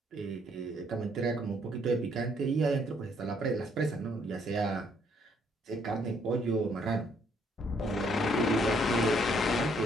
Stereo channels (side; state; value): both; normal; correlation 0.68